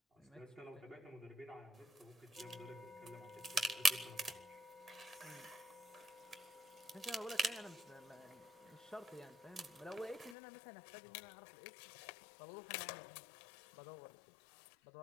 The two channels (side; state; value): right; drops out; at 10.4 s